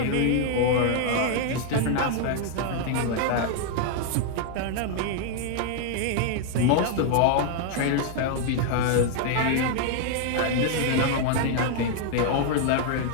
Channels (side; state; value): both; different; correlation 0.00